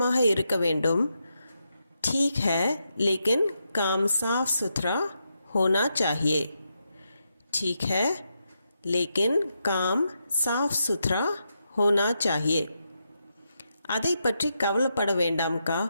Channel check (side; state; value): both; inverted; correlation -0.84